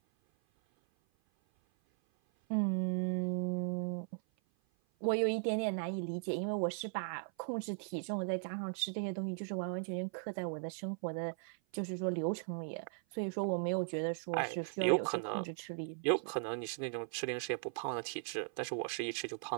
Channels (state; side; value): silent; left; 52 dB below the other